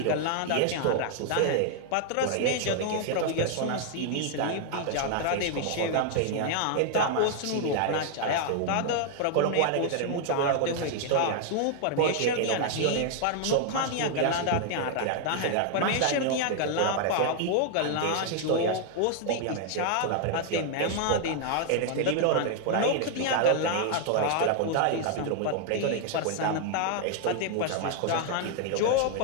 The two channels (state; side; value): different; both; correlation 0.00